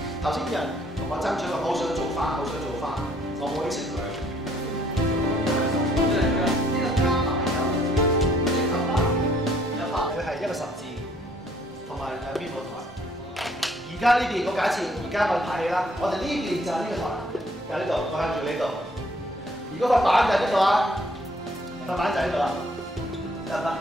頭先人同我爭取話好想做翻，好想做翻，我冇應承佢。佢係一個十字，同埋兩邊舞台。而家呢邊我假設，而家我拍戲啦，我哋呢邊就係呢個台，就喺呢度，我向住呢度。如果個板就喺呢度啊，個板就喺度啦，得唔得？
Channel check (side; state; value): both; normal; correlation 0.63